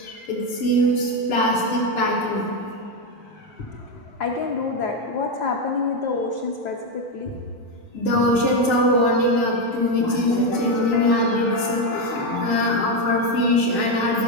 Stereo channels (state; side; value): normal; both; correlation 0.08